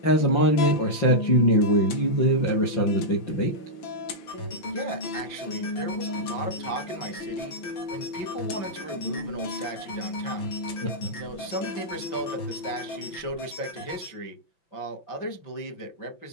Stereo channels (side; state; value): right; late; 5.9 ms